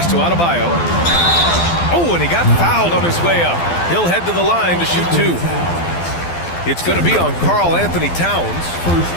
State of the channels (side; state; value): right; late; 12 ms